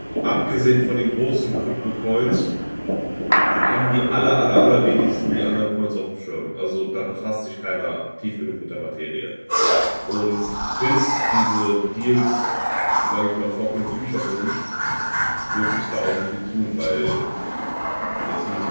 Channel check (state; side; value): inverted; both; correlation -1.00